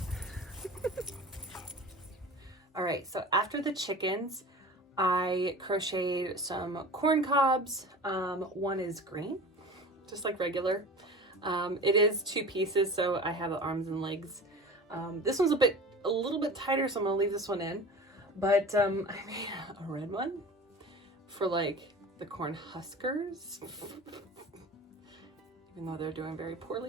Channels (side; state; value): both; normal; correlation 0.37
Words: All right, so after the chickens, I crocheted some corn cobs. One is green, just like regular. It is 2 pieces, so I have the arms and legs. This one's a little bit tighter, so I'm gonna leave this one in. But I made a red one for like the corn huskers, even though they're doing very